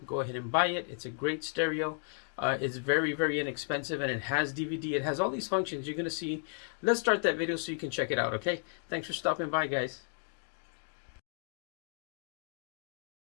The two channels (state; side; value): silent; right; 55 dB below the other